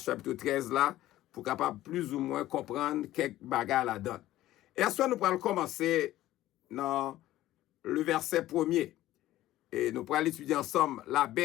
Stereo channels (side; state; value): right; quieter; 15.0 dB